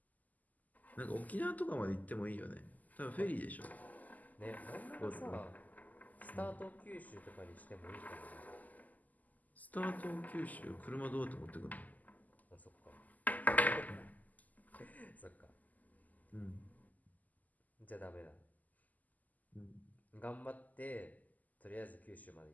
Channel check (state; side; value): late; right; 0.080 ms